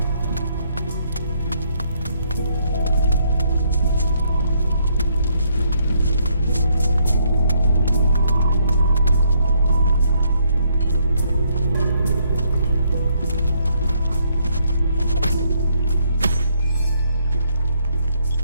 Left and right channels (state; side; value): inverted; both; correlation -0.71